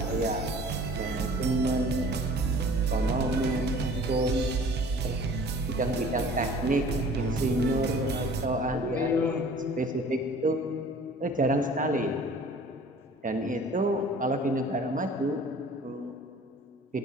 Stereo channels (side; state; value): both; normal; correlation 0.48